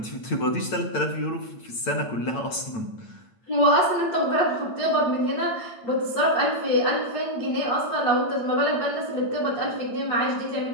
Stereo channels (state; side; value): late; right; 8.8 ms